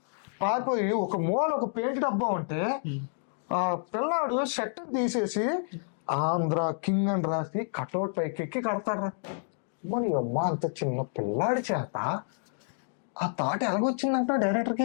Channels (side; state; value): right; silent; digital silence